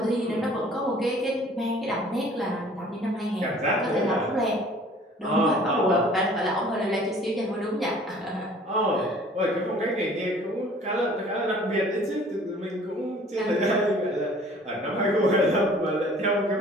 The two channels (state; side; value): normal; both; correlation 0.52